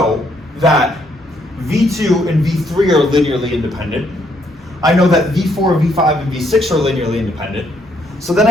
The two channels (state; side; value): normal; both; correlation 0.71